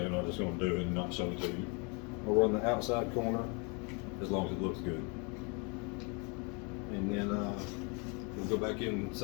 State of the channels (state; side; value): quieter; right; 32.8 dB